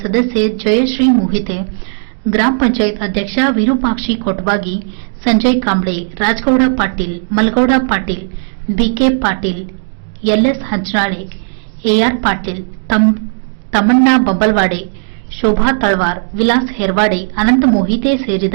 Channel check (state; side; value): silent; left; digital silence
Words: ಸದಸ್ಯೆ ಜಯಶ್ರೀ ಮೊಹಿತೆ, ಗ್ರಾಮ ಪಂಚಾಯತ್ ಅಧ್ಯಕ್ಷ Virupakshi Kotbagi, Sanjay Kamble, Rajgouda Patil, Malgouda Patil, B K Patil, L S Hanchanale, A R Patil, Tammanna Babbalwade, Shobha Talwar, Vilas Herwade, Anant Mohite